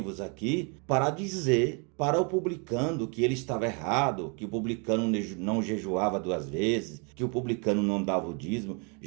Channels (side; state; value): left; quieter; 34.8 dB